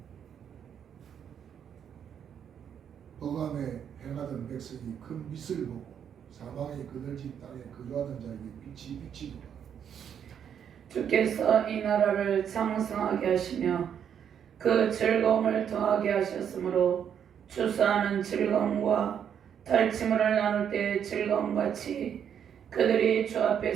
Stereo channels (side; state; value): left; quieter; 8.4 dB